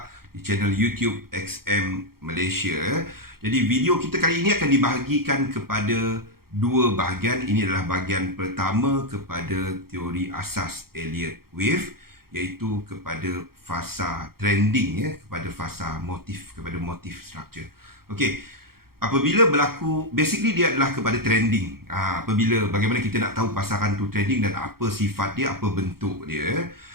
di channel YouTube XM Malaysia. Jadi video kita kali ini akan dibahagikan kepada dua bahagian. Ini adalah bahagian pertama kepada teori asas Elliott Wave, iaitu kepada fasa trending, kepada fasa motif, kepada motif structure. Okey. Apabila berlaku, basically dia adalah kepada trending. Apabila bagaimana kita nak tahu pasaran tu trending dan apa sifat dia, apa bentuk dia.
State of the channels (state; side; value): late; left; 0.94 ms